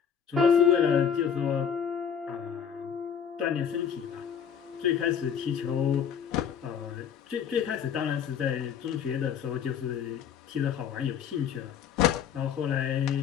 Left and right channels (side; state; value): right; quieter; 7.8 dB